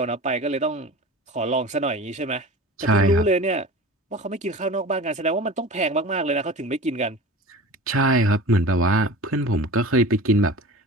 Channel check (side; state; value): both; normal; correlation 0.35